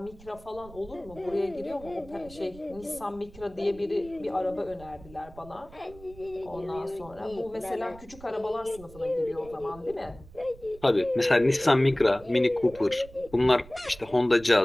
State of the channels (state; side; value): noise; right; rumble, 20 dB below the sound